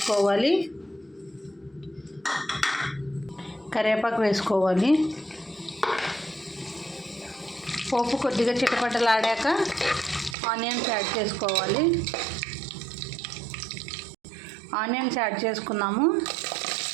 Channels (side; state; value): left; drops out; at 10.4 s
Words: కరివేపాకు వేసుకోవాలి. పోపు కొద్దిగా చిటపటలాడాక ఆనియన్స్ యాడ్ చేసుకోవాలి. ఆనియన్స్ యాడ్ చేసుకున్నాము.